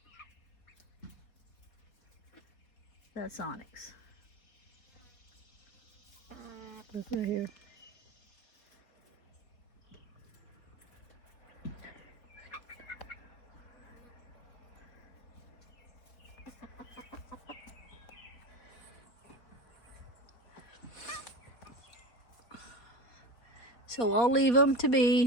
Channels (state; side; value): late; right; 4.0 ms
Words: That's onyx. Look right here. So I'll leave them to